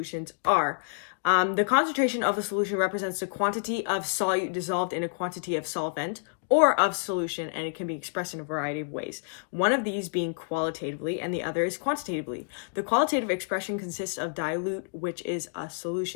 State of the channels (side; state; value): right; silent; digital silence